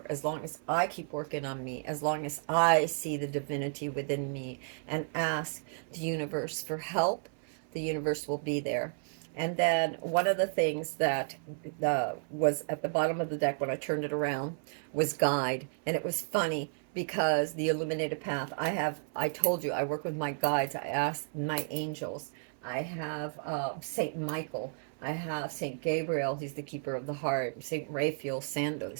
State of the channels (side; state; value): left; silent; 56 dB below the other